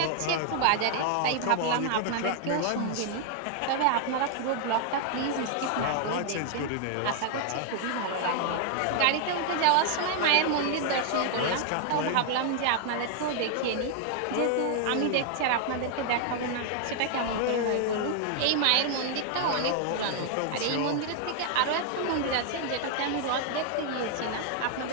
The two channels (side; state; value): both; different; correlation 0.00